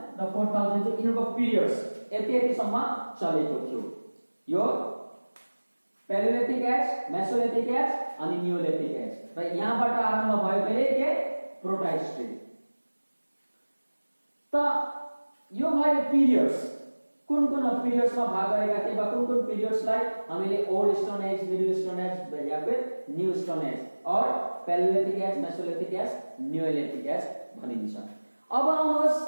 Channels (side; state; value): both; inverted; correlation -1.00